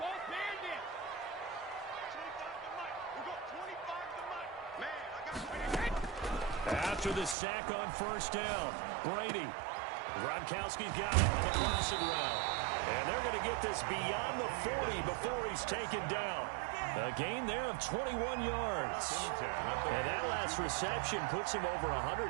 After the sack on first down, Brady. Gronkowski's got it on the crossing route. And they're going to get this beyond the 40 before he's taken down. A gain there of 21 yards. And that last reception puts him over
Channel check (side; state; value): left; drops out; at 7.4 s